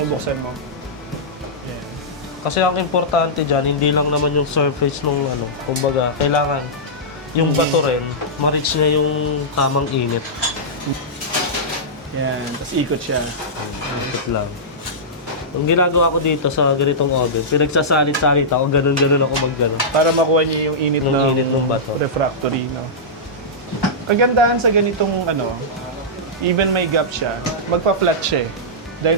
mo. Ayan. Kasi ang importante dyan, hindi lang naman yung surface nung kumbaga, kailangan yung bato rin, ma-reach niya yung tamang init. Yan, tapos ikot siya. Ikot lang. Ang ginagawa ko dito sa ganitong oven, pinagsasalit-salit ako, ganun-ganun ako mag-ganun. Para makuha niya yung init, ng bato. Refractory, no? Kagandahan sa ganitong even may gap siya, magpa-flat siya eh.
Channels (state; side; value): normal; both; correlation -0.13